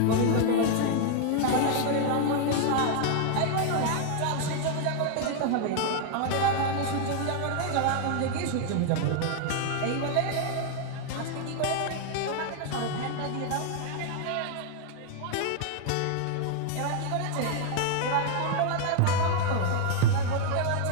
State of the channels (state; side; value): different; both; correlation 0.00